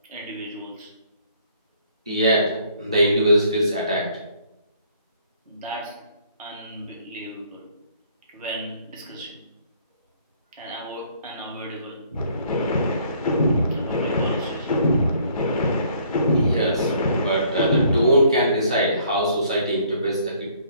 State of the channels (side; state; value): both; inverted; correlation -0.61